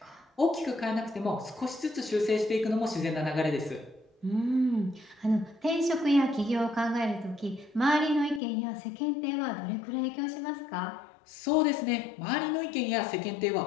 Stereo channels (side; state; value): right; drops out; at 8.4 s